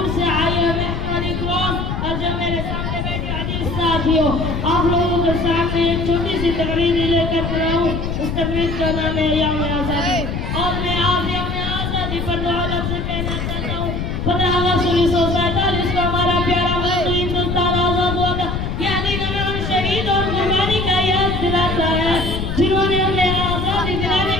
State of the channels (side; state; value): left; noise; rumble, 3 dB below the sound